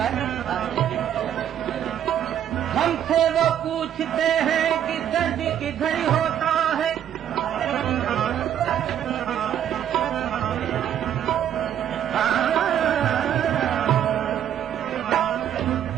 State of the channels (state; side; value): quieter; left; 10.1 dB